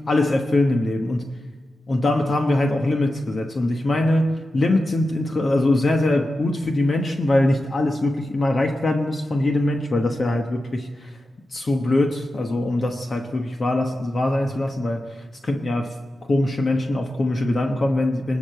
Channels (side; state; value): both; normal; correlation 0.92